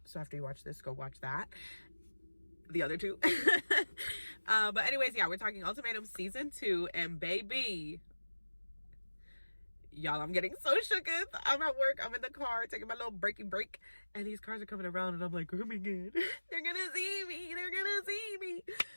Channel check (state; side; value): inverted; both; correlation -1.00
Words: so after you watch this, go watch that. The other 2. But anyways, yeah, we're talking Ultimatum season 2, and baby, y'all, I'm getting so shooketh. I'm at work, I'm in the car taking my little breaking break, and these cars are coming around, and I'm like, oh my god, they're gonna see me,